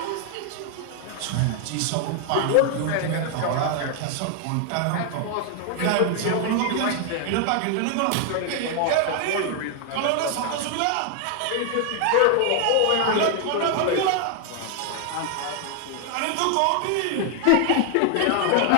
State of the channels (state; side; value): different; both; correlation 0.00